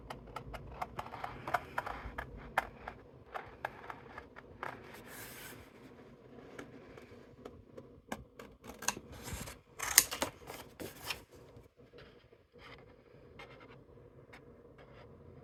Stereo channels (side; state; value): both; identical; correlation 1.00